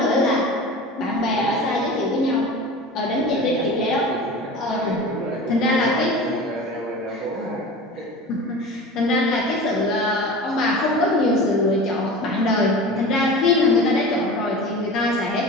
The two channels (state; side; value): normal; both; correlation 0.35